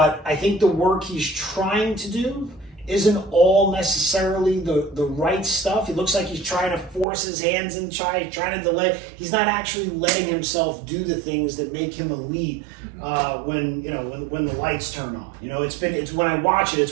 I think the work he's trying to do isn't all necessarily the right stuff. It looks like he's trying to force his hands and trying to delay. He's not actually letting himself do the things that make him elite when the lights turn on. You know, it's when I watch it,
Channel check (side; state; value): left; drops out; at 7.1 s